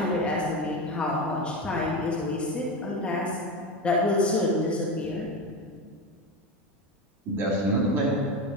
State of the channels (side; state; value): both; normal; correlation 0.19